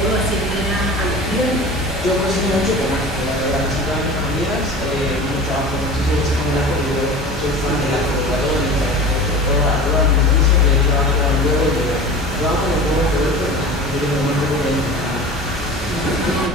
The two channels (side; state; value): both; normal; correlation 0.37